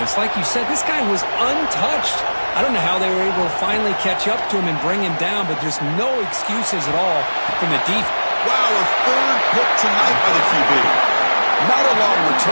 Like you said, this guy was untouched. I don't know how they were able to finally catch up to him and bring him down, but there's no excuses at all from the defense. Wow, a third pick tonight by the QB. Not a long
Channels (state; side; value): inverted; both; correlation -1.00